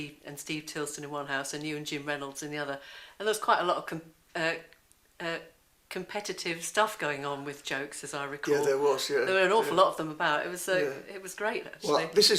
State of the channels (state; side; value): identical; both; correlation 1.00